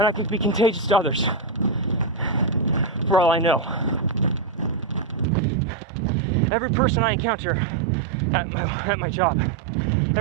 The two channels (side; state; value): left; drops out; at 5.2 s